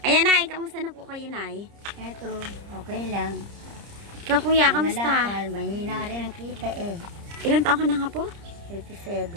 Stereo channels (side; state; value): left; late; 30 ms